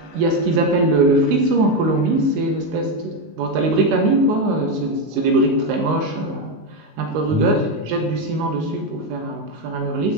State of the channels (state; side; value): late; left; 19 ms